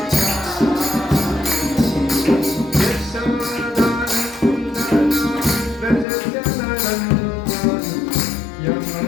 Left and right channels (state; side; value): drops out; right; at 6.1 s